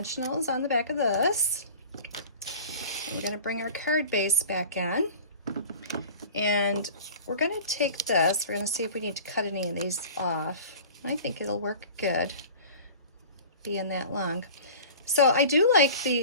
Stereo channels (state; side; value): inverted; both; correlation -0.40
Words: on the back of this. And we're going to bring our card base back in. And we're going to take this. We're going to see if we need to cut any of these off. I think it'll work good being that long. So I do like